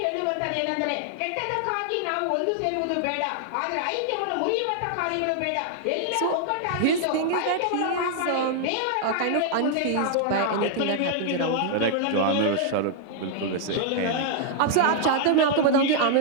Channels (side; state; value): both; different; correlation 0.00